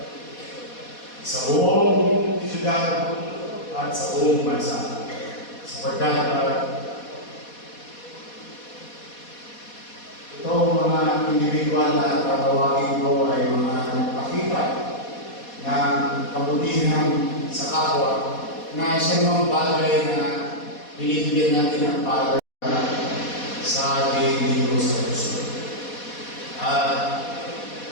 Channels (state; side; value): late; right; 4.2 ms